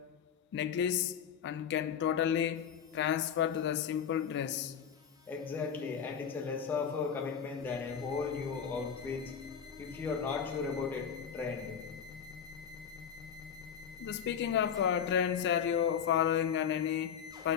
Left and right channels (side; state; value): right; quieter; 7.8 dB